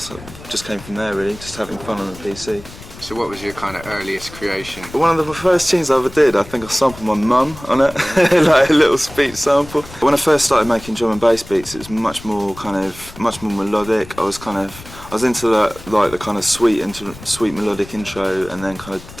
just came from there really, just having fun on the PC. So what was your kind of earliest creation? One of the first tunes I ever did, I think I sampled my mum on it, like a little speech sample. When I first started making drum and bass beats, it was much more melodic. I was into the kind of sweet melodic intro, and then kind of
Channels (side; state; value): left; noise; rumble, 17 dB below the sound